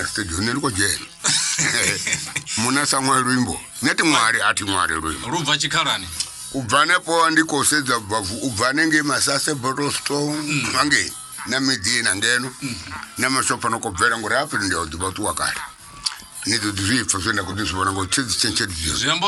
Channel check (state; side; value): identical; both; correlation 1.00